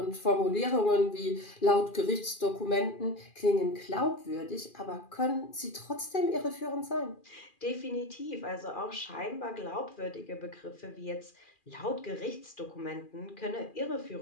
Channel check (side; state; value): right; late; 2.4 ms